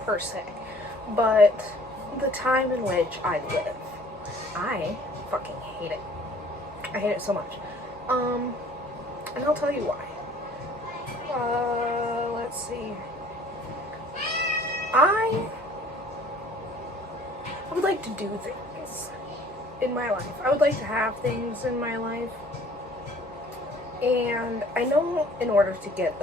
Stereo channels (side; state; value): both; normal; correlation 0.53